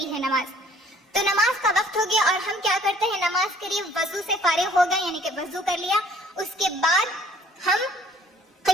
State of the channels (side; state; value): both; normal; correlation 0.57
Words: ہے نماز۔ تو نماز کا وقت ہو گیا اور ہم کیا کرتے ہیں، نماز کے لیے وضو سے فارغ ہو گئے، یعنی کہ وضو کر لیا، اس کے بعد ہم